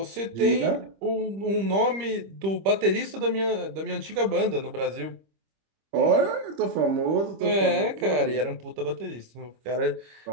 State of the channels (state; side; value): late; left; 25 ms